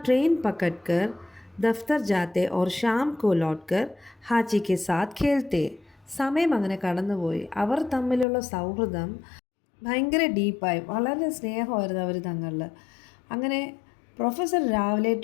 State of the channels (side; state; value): right; drops out; at 8.2 s